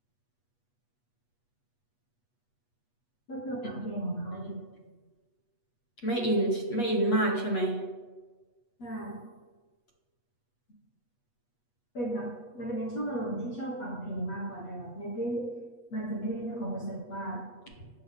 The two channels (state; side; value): late; right; 8.3 ms